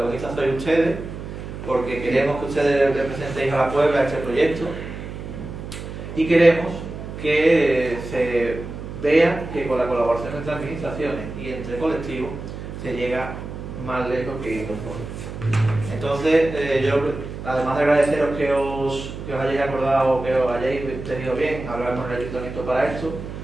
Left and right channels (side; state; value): right; noise; hum, 9 dB below the sound